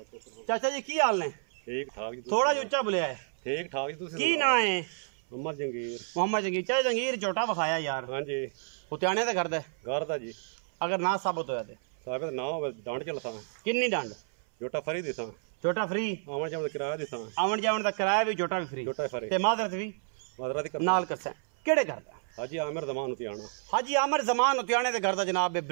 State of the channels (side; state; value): left; silent; 58 dB below the other